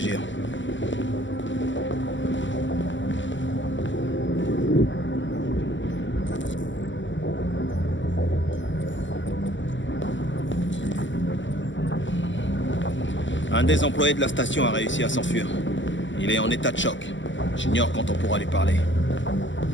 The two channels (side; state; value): right; late; 0.54 ms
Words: Un des employés de la station a réussi à s'enfuir. Il est en état de choc. J'ignore quand on pourra lui parler.